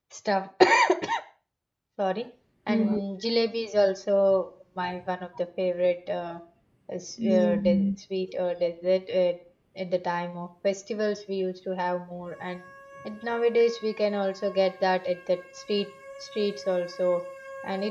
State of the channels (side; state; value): both; identical; correlation 1.00